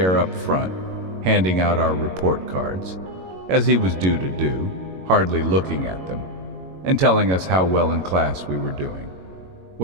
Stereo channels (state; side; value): late; left; 22 ms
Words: up front, handing out our report cards, as he was due to do, hardly looking at them, and telling us how well in class we were doing.